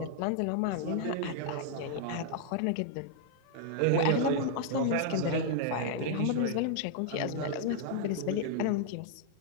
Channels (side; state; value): both; different; correlation -0.01